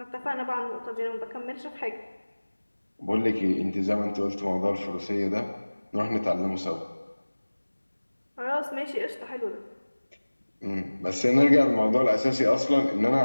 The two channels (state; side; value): inverted; both; correlation -1.00